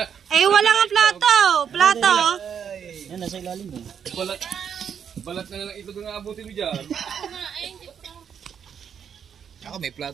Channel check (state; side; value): quieter; left; 7.8 dB